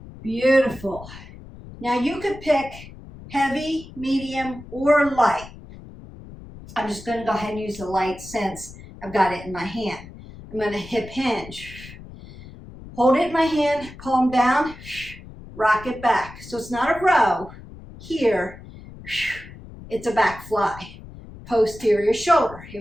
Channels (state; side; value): noise; left; rumble, 16 dB below the sound